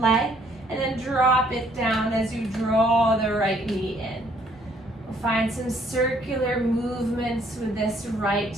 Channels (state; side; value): normal; both; correlation 0.64